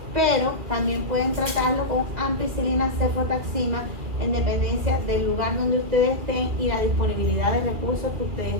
pero también pueden tratarlo con ampicilina, cefotaxima, en dependencia del lugar donde ustedes estén y la disponibilidad de recursos que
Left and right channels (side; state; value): left; late; 2.6 ms